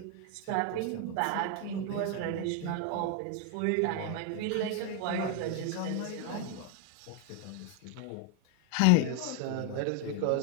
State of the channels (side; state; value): both; different; correlation 0.01